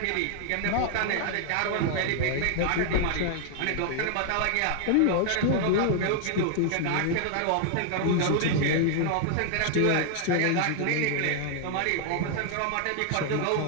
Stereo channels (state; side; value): different; both; correlation 0.00